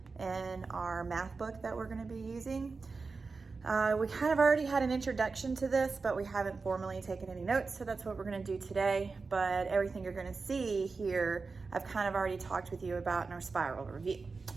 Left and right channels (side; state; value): left; quieter; 4.3 dB